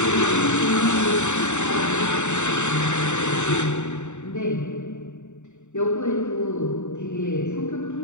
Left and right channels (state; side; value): late; right; 0.84 ms